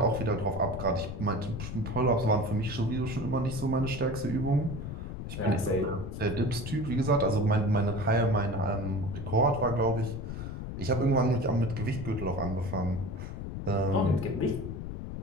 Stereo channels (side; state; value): left; noise; rumble, 7 dB below the sound